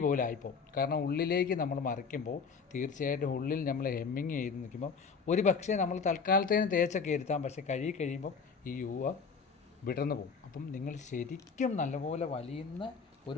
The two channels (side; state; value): right; quieter; 5.5 dB